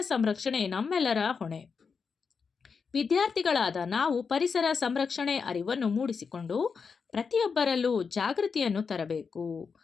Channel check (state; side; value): quieter; right; 5.5 dB